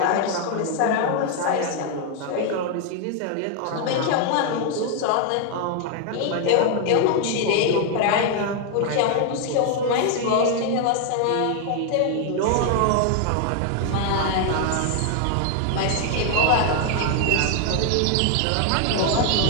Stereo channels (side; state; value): both; different; correlation 0.00